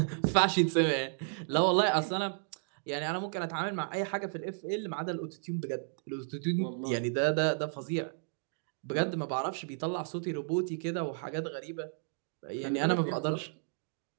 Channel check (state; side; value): silent; left; digital silence